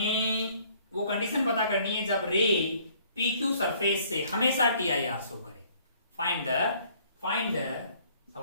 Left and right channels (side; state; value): both; inverted; correlation -0.60